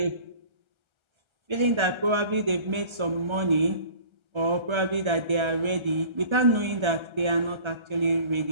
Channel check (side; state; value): left; late; 1.3 ms